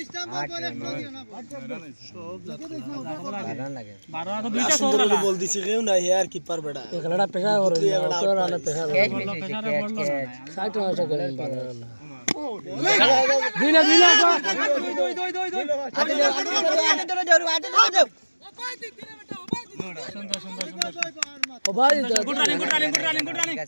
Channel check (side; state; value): both; inverted; correlation -1.00